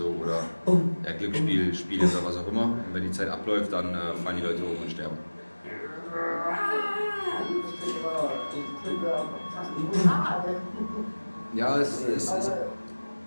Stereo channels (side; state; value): both; inverted; correlation -1.00